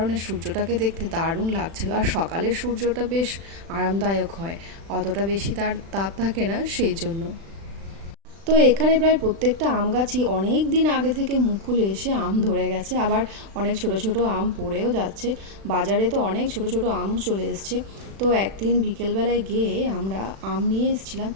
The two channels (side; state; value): left; late; 36 ms